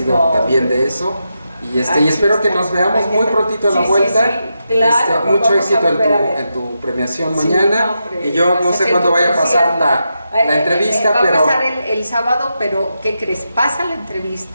No. también de eso, y Aquí espero que está. nos veamos Aquí muy está. prontito a la Sí, vuelta. sí, claro, nos Mucho vamos a éxito volver a ver. en tu premiación Sí, mañana, no, hombre, y yo no pues, sé es cuándo tu vaya a pasar concierto. la entrevista, va pero... a pasar el sábado, pero ¿qué crees? Pasa la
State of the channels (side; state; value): both; inverted; correlation -0.86